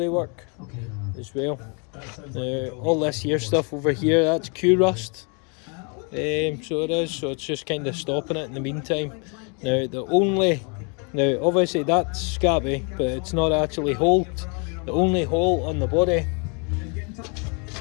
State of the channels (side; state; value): right; quieter; 35.8 dB